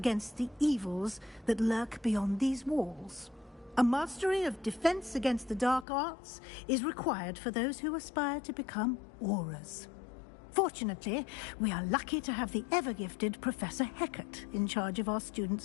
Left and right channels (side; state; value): right; drops out; at 5.9 s